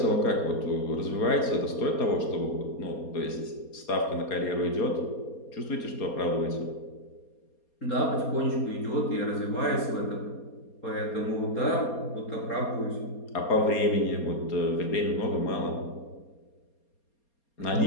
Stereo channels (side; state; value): right; late; 4.3 ms